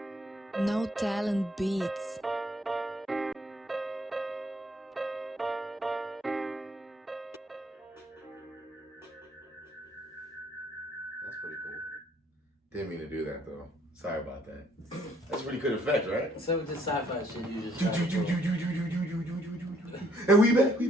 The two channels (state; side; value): normal; both; correlation 0.65